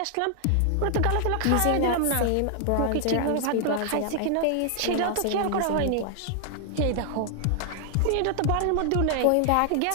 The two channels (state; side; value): different; both; correlation 0.00